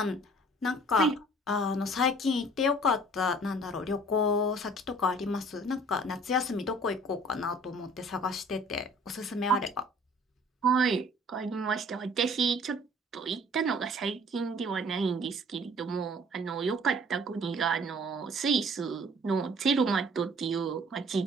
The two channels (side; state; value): both; normal; correlation 0.53